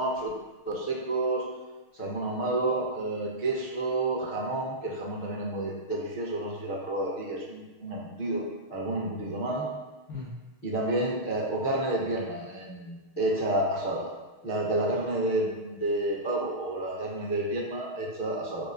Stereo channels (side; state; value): right; late; 6.5 ms